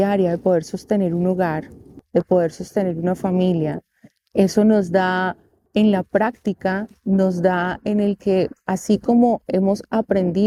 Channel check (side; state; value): both; identical; correlation 1.00